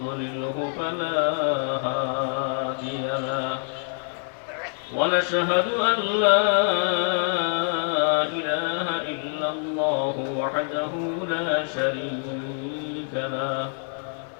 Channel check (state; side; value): silent; right; 61 dB below the other